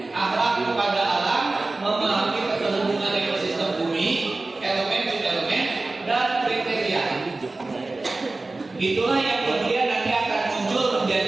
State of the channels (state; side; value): quieter; left; 3.3 dB